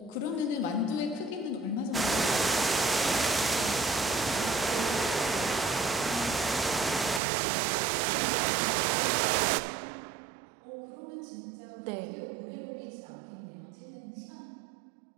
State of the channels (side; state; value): left; drops out; at 7.2 s